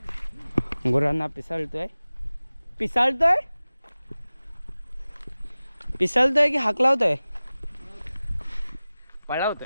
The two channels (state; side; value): inverted; both; correlation -0.97